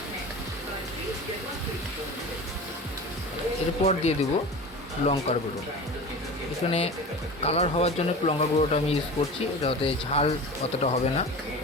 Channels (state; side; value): normal; both; correlation 0.33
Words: এরপর দিয়ে দেবো লঙ্কার গুঁড়ো। এখানে কালার হওয়ার জন্য লঙ্কার গুঁড়োটা আমি ইউজ করছি, এটাতে ঝাল অতটা হবে না।